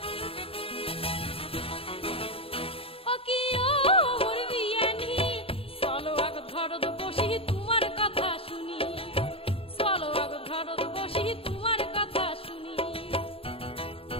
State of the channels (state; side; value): late; right; 0.27 ms